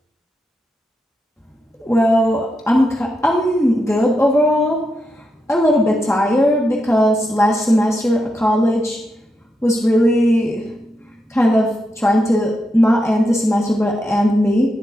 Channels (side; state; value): both; normal; correlation 0.85